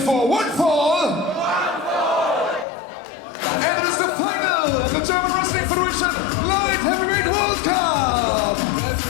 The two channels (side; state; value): right; drops out; at 2.7 s